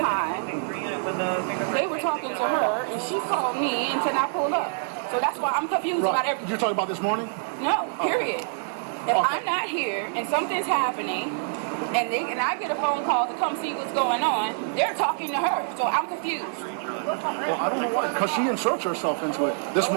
they were talking to her and she called me and said I pulled up. So that's why I'm confused about everything. You're talking about this morning? No, period. If I'm not here and something's happening and I get a phone call to come see what's going on, they're talking to her. So I'm confused. Well, I don't know why, because she inserts herself into it. This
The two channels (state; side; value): silent; left; digital silence